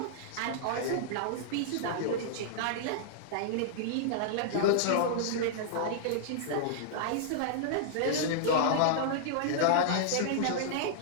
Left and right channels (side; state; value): both; different; correlation -0.01